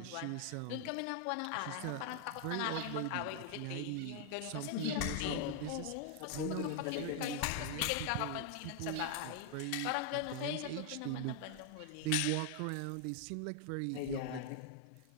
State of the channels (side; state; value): both; different; correlation 0.00